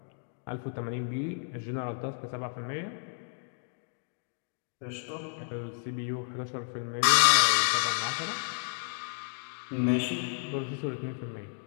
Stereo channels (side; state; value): right; silent; 57 dB below the other